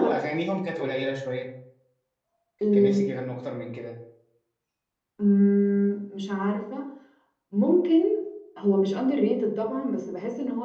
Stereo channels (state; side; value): identical; both; correlation 1.00